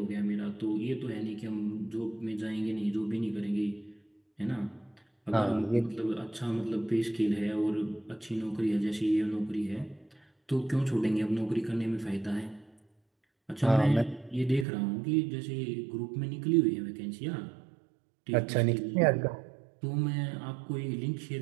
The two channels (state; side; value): drops out; left; at 14.7 s